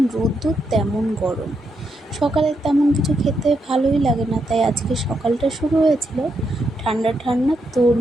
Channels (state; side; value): normal; both; correlation 0.81